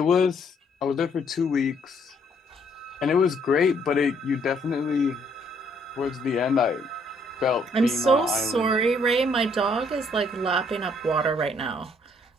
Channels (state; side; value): normal; both; correlation 0.67